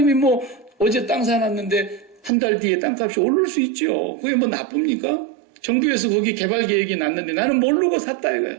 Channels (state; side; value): drops out; left; at 2.3 s